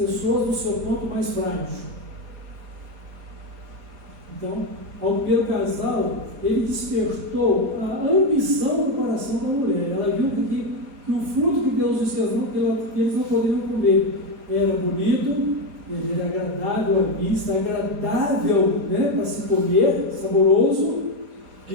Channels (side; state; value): left; late; 5.0 ms